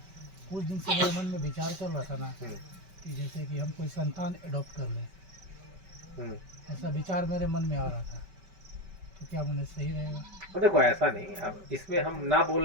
कुछ दिन से मेरे मन में विचार चल रहा था ना कि जैसे कि हम कोई संतान अडॉप्ट कर लें, ऐसा विचार मेरे मन में आ रहा था, तो क्या मुझे सही रहेगा? तो देखो ऐसा नहीं, अब इसमें हम ना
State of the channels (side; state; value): left; late; 5.2 ms